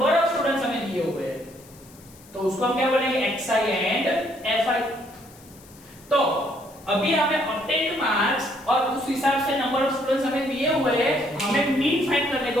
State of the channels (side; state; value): left; noise; hiss, 24 dB below the sound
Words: ऑफ स्टूडेंट्स हमें दिए हुए हैं। तो उसको हम क्या बोलेंगे? xi and fi। तो अभी हमें ऑब्टेन मार्क्स और उस हिसाब से नंबर ऑफ स्टूडेंट्स हमें दिए हुए हैं, हमें मीन फाइंड करने